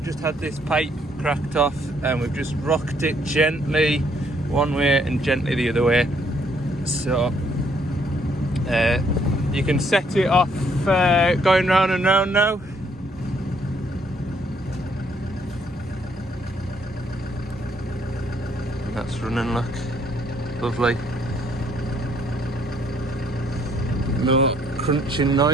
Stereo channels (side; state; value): both; normal; correlation 0.67